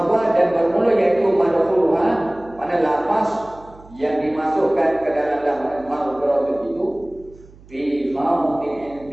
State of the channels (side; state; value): right; noise; hum, 23 dB below the sound